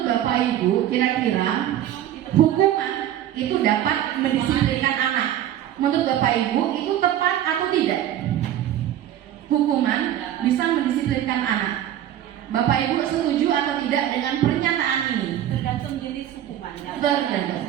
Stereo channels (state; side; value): quieter; left; 11.6 dB